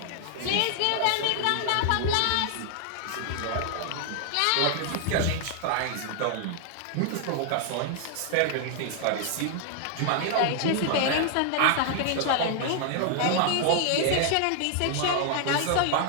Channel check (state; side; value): different; both; correlation 0.00